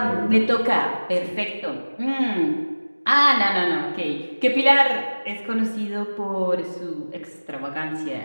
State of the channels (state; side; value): inverted; both; correlation -1.00